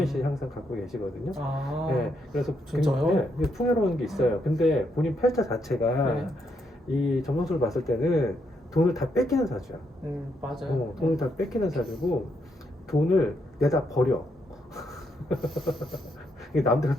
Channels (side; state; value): both; normal; correlation 0.77